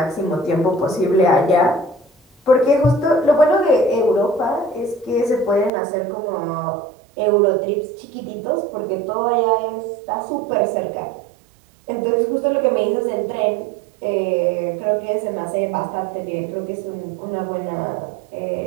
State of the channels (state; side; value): drops out; left; at 5.7 s